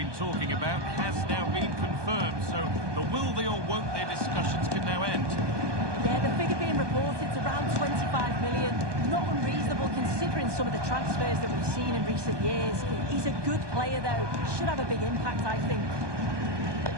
talking about has now been confirmed, so the will they or won't they discussions can now end. Yeah, the figure being reported is around 25 million. Not unreasonable considering some of the transfers that we've seen in recent years. He's a good player, though. Should have a big impact, I think.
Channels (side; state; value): left; late; 1.2 ms